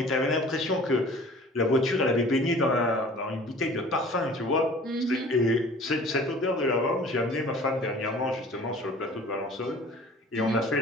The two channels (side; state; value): both; normal; correlation 0.47